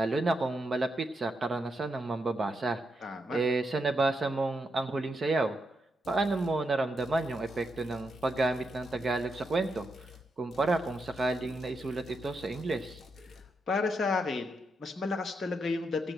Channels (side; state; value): both; normal; correlation 0.83